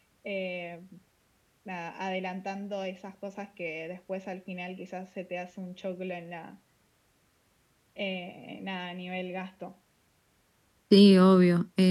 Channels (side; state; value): both; identical; correlation 1.00